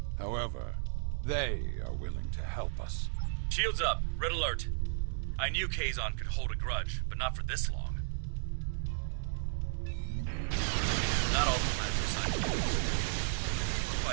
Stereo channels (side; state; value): left; silent; digital silence